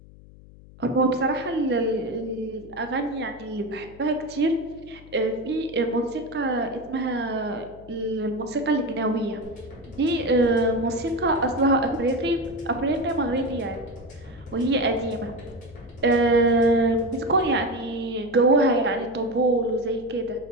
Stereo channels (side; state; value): left; noise; hum, 21 dB below the sound